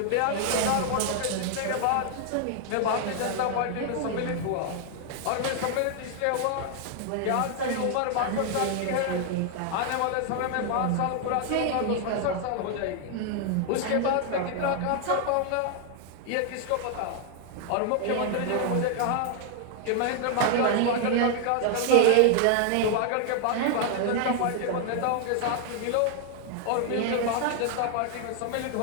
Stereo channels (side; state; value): both; different; correlation 0.00